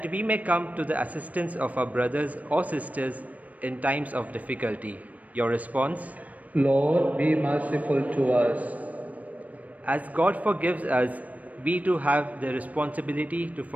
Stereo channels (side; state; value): left; late; 0.072 ms